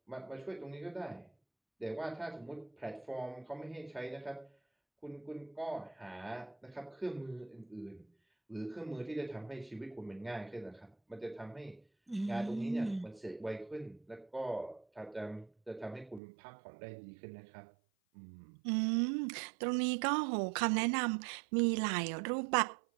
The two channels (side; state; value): left; drops out; at 16.2 s